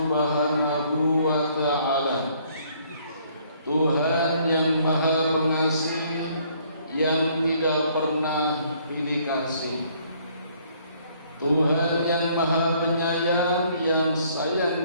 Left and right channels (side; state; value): both; inverted; correlation -0.63